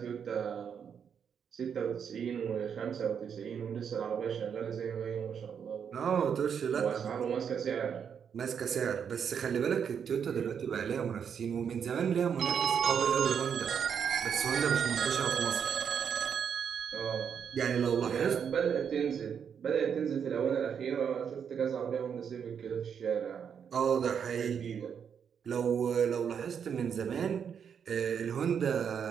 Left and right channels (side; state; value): left; quieter; 7.4 dB